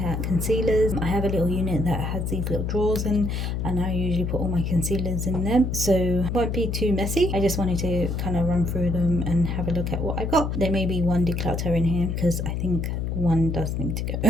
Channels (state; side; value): noise; left; hum, 2 dB below the sound